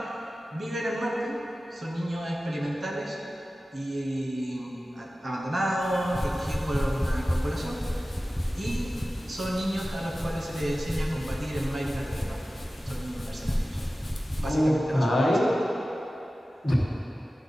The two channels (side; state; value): both; normal; correlation 0.96